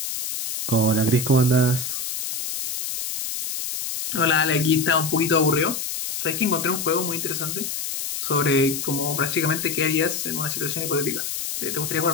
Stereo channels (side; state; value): left; noise; hiss, 4 dB below the sound